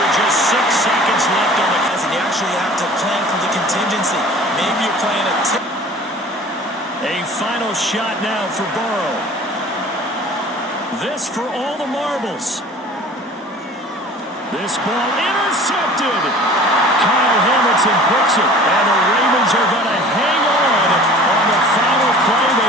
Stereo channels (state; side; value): normal; both; correlation 0.45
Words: just 6 seconds left on the clock. And you actually have to plan for the contingency. Maybe you're playing a tip. A final shot now for Burrow. This for all the marbles. This ball intercepted. Kyle Hamilton picks it, and the Ravens are going to hang on the final play.